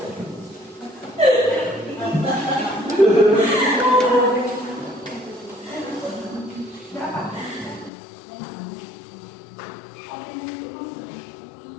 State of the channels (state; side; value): drops out; right; at 7.9 s